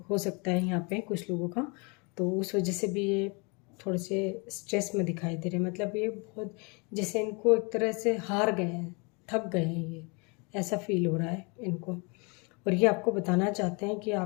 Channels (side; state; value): right; quieter; 31.4 dB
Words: सकता है यहाँ पे कुछ लोगों का। तो उस वजह से भी ये थोड़े से स्ट्रेस में दिखाई दे रहे हैं। मतलब ये बहुत जैसे इनको एक तरह से हार गए हैं, थक गए हैं, ये ऐसा फील हो रहा है इनको। और ये आपको बताना चाहते हैं कि